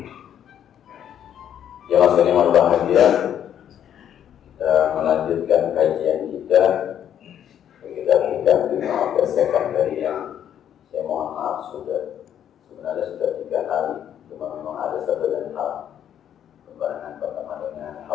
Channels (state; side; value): quieter; right; 9.8 dB